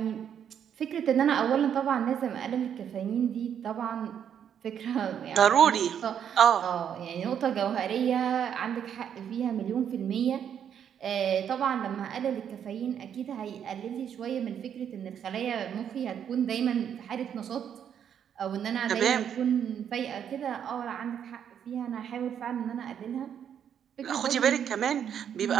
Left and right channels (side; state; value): left; quieter; 8.7 dB